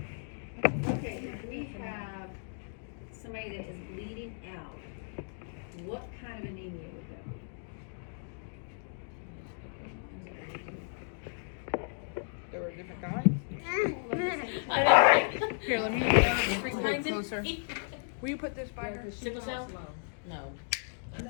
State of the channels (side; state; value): right; silent; digital silence